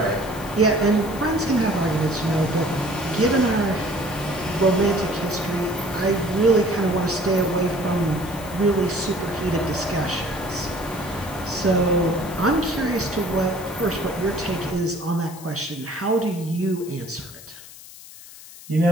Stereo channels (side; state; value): left; noise; hiss, 17 dB below the sound